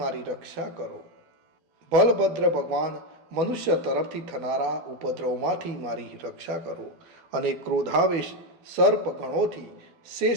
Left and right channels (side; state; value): left; late; 12 ms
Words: મારી રક્ષા કરો. બલભદ્ર ભગવાન મનુષ્ય તરફથી થનારા ઉપદ્રવમાંથી મારી રક્ષા કરો. અને ક્રોધાવેશ સર્પ ગણોથી